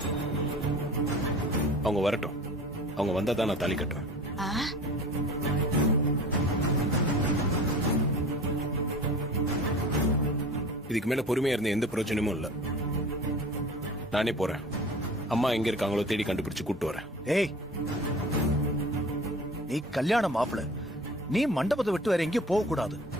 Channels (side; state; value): both; normal; correlation 0.40